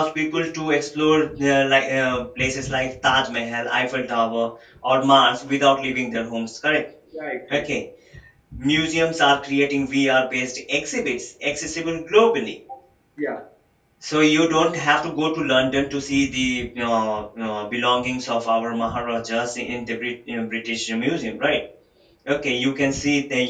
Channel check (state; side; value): identical; both; correlation 1.00